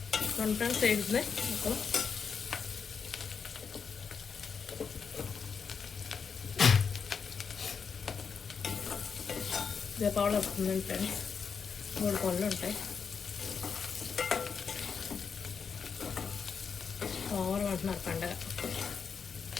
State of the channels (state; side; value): quieter; right; 6.1 dB